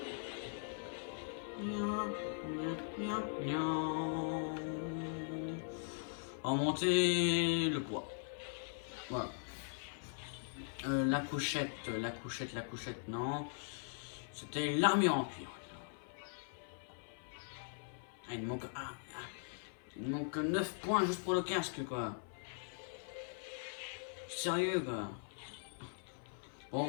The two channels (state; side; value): silent; right; 51 dB below the other